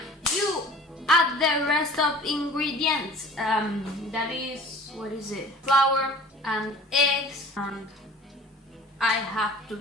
You add the rest of ingredients. That is... what is it? Flour and eggs, and I have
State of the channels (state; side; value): normal; both; correlation 0.45